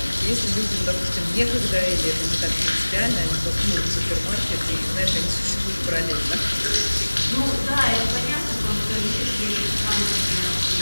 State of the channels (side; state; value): both; inverted; correlation -1.00